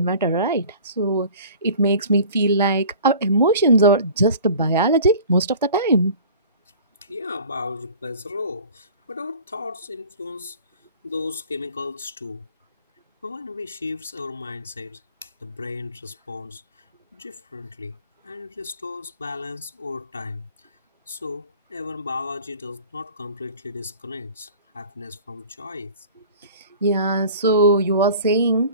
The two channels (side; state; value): both; inverted; correlation -0.44